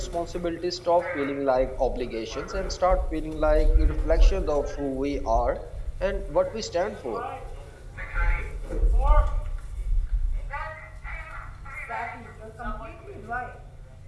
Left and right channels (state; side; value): identical; both; correlation 1.00